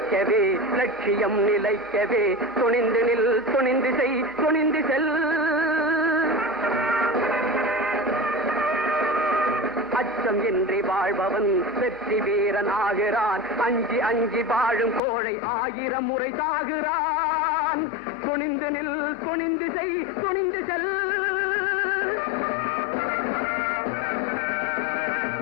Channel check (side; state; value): right; drops out; at 15.0 s